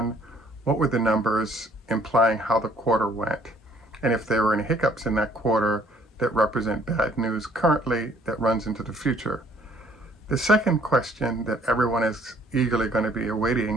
what were the numbers implying how the quarter went? And if there were any hiccups in that quarter that represent bad news currently that runs into the future. The second question that everyone is eagerly going to be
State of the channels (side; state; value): both; normal; correlation 0.61